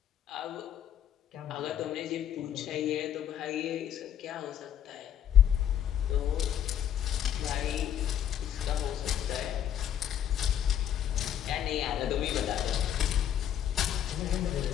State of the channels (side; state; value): right; quieter; 10.0 dB